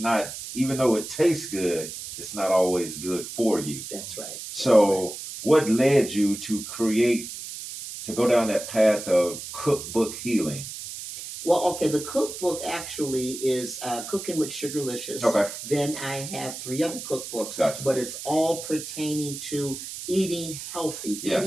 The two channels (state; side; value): noise; right; hiss, 9 dB below the sound